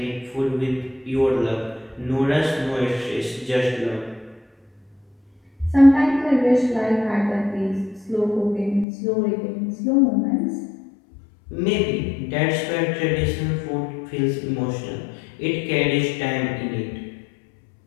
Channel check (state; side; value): drops out; right; at 8.8 s